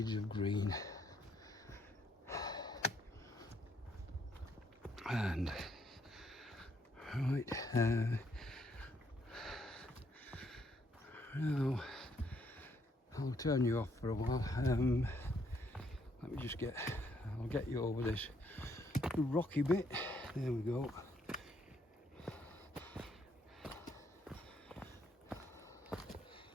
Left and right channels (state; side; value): normal; both; correlation 0.71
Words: of green. And right, Now, I'll turn you off for a while. Let me just I'll get you over this rocky bit. There we go.